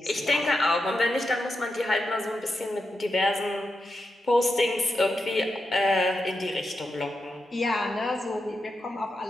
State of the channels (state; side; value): normal; both; correlation 0.87